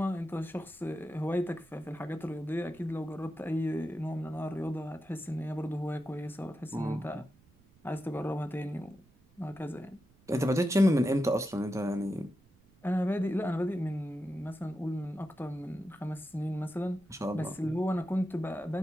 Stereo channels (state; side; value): noise; right; rumble, 29 dB below the sound